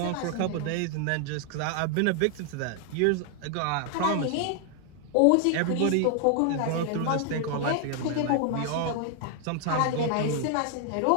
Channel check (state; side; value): different; both; correlation 0.00